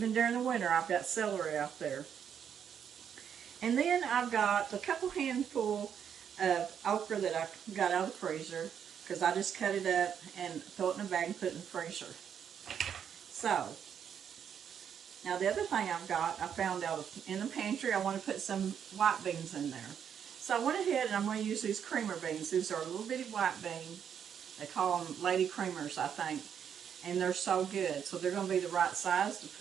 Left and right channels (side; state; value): left; quieter; 8.2 dB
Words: during the winter, I've got celery out there. And then I've got a couple handful of okra that I got out of the freezer, because I just cut it up and throw it in a bag and put it in the freezer. So, now the other thing I've got, I found out in the pantry, I want to put some white beans in there. So I went ahead and I'm going to use these creamer beans. These are little bitty white beans. They call them lady creamers, I think. And they're so good. So they're going to be the right size to